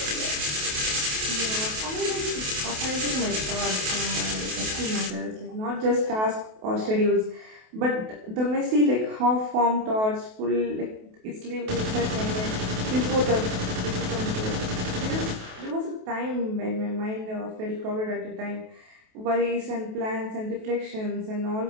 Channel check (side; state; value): left; late; 28 ms